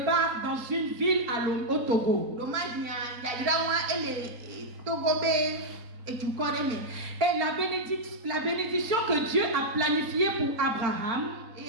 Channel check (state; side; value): late; left; 4.4 ms